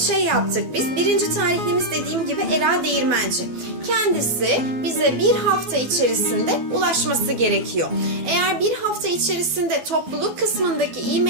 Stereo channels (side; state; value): left; late; 12 ms